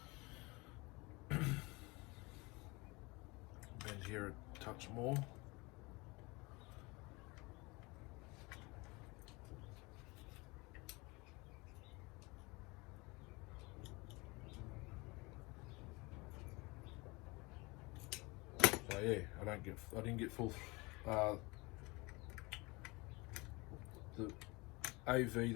Bend here a touch more. So yeah, I didn't get full. The AV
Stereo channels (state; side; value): quieter; right; 25.2 dB